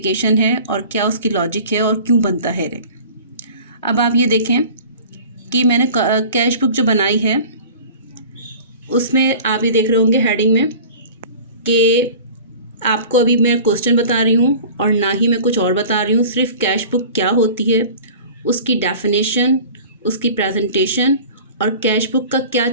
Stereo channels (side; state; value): both; inverted; correlation -0.41